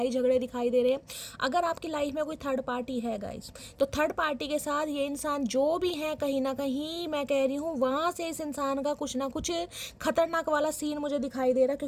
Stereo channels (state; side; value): identical; both; correlation 1.00